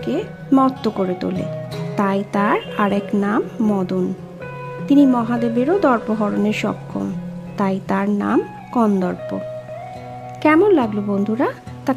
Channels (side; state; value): both; identical; correlation 1.00